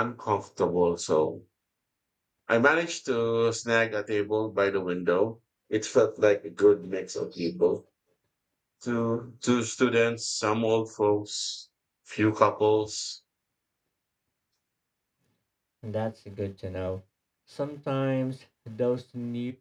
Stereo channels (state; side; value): identical; both; correlation 1.00